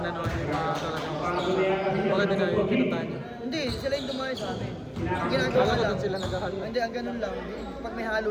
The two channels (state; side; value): identical; both; correlation 1.00